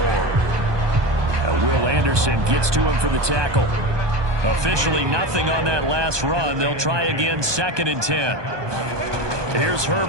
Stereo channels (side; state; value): left; late; 1.2 ms